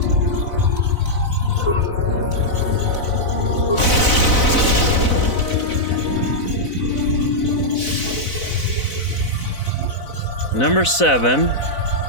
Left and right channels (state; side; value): late; right; 4.0 ms